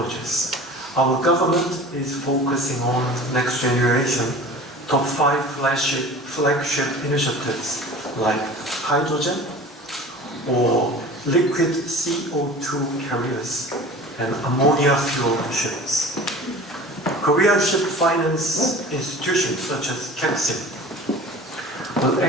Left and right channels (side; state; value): both; normal; correlation 0.40